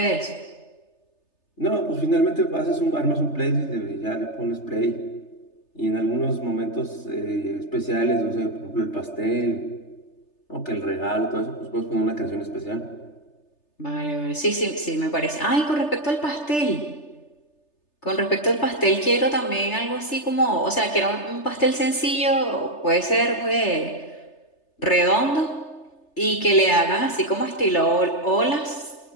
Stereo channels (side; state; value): right; late; 3.3 ms